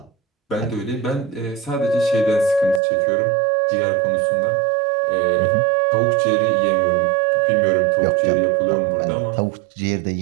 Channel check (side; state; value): left; drops out; at 2.8 s